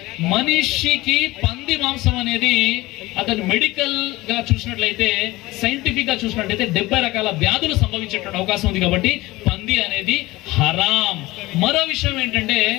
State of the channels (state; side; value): quieter; right; 19.6 dB